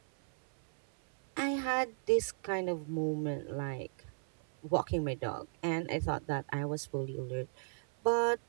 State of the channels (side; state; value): left; silent; 54 dB below the other